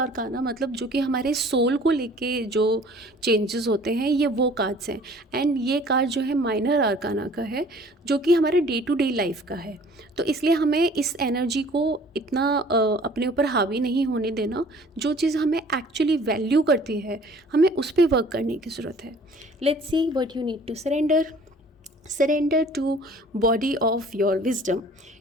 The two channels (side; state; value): both; normal; correlation 0.51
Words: मतलब जो कि हमारे सोल को लेके जो चेंजेस होते हैं, ये वो कार्ड्स हैं। एंड ये कार्ड जो है माइनर आर्काना का है, जो कि हमारे डे टू डे लाइफ का है। तो इसलिए हमें इस एनर्जी को इतना अपने ऊपर हावी नहीं होने देना। जो चीज़ हमें एक्चुअली वैल्यू करती है, हमें उस पर वर्क करने की ज़रूरत है। Let's see what you need to surrender to body of your wisdom.